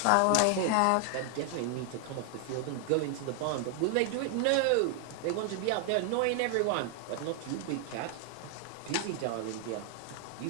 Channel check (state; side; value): different; both; correlation 0.00